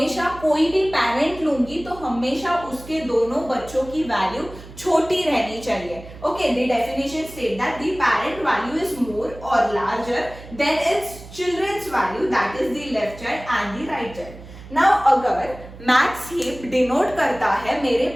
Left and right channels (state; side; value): noise; right; hum, 17 dB below the sound